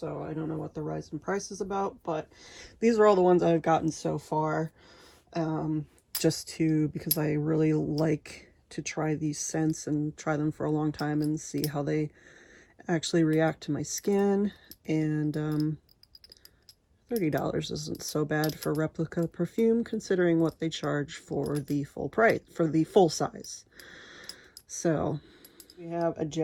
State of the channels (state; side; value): identical; both; correlation 1.00